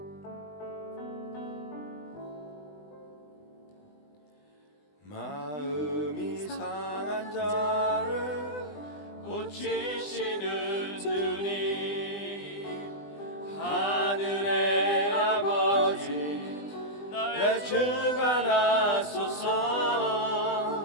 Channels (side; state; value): right; late; 20 ms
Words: 마음이 상한 자를 고치시는 주님, 하늘의 아버지 나의 주가 나소서.